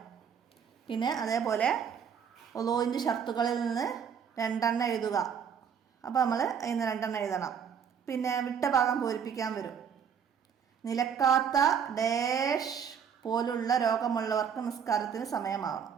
പിന്നെ അതേപോലെ ഉളൂഇൻ്റെ ഷർത്തുകളിൽ നിന്ന് 2 എണ്ണം എഴുതുക. അപ്പോൾ നമ്മൾ അതിന് 2 എണ്ണം എഴുതണം. പിന്നെ വിട്ട ഭാഗം പൂരിപ്പിക്കാൻ വരും. നിലക്കാത്ത ഡാഷ് പോലുള്ള രോഗമുള്ളവർക്ക് നിസ്കാരത്തിന് സമയമാവണം.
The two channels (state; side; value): quieter; left; 7.4 dB